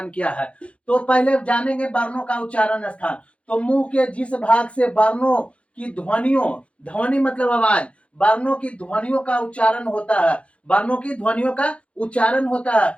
क्या है। तो पहले जानेंगे वर्णों का उच्चारण स्थान। तो मुंह के जिस भाग से वर्णों की ध्वनियों, ध्वनि मतलब आवाज, वर्णों की ध्वनियों का उच्चारण होता है, वर्णों की ध्वनियों का उच्चारण होता है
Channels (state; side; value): late; right; 0.061 ms